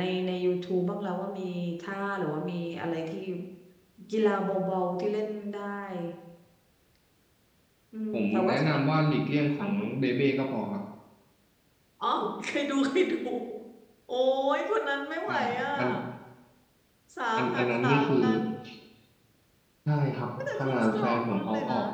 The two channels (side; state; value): both; identical; correlation 1.00